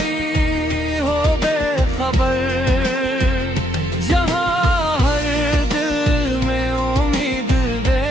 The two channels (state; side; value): normal; both; correlation 0.73